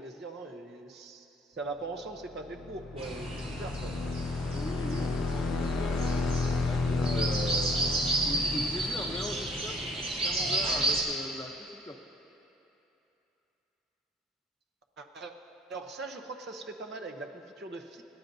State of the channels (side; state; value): both; normal; correlation 0.58